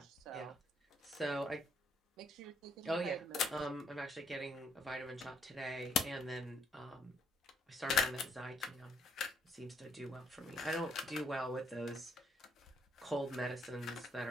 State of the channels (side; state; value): both; normal; correlation 0.70